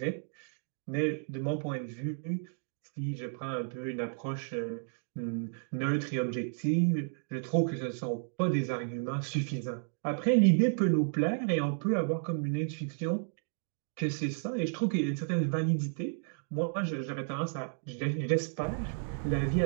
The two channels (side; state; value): left; silent; digital silence